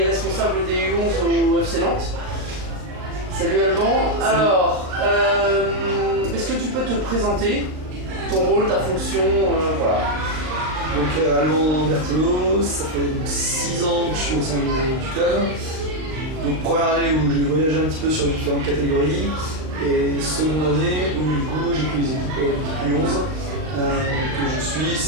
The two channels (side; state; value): left; late; 38 ms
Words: responsable des U11 au FC Nantes. Salut Alban. Salut. Alors, est-ce que tu peux te présenter, ton rôle, ta fonction, voilà. Donc Alban Berthelot, ça fait donc 6 ans que je suis au sein du club. Donc première année où j'ai voyagé un petit peu sur les différentes catégories et seconde année où du coup j'ai pris les équipes U11 que je suis